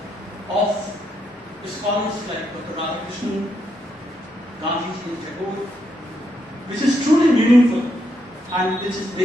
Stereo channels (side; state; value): both; normal; correlation 0.79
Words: of scholars like Dr. Radhakrishnan, Gandhiji and Tagore, which is truly meaningful and which is